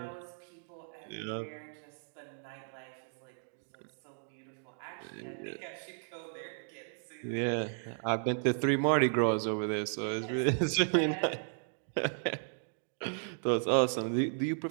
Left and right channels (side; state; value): left; silent; digital silence